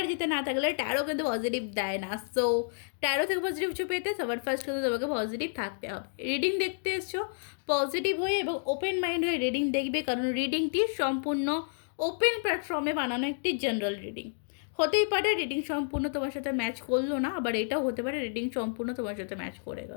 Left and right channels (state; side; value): silent; right; digital silence